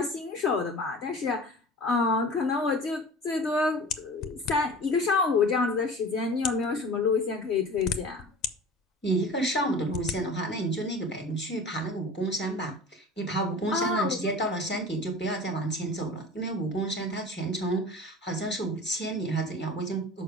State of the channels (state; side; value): normal; both; correlation 0.39